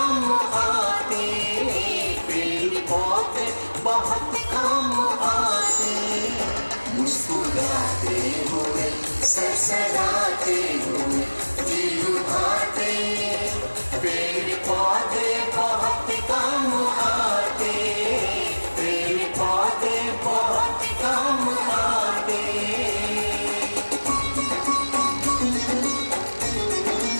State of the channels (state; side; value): inverted; both; correlation -1.00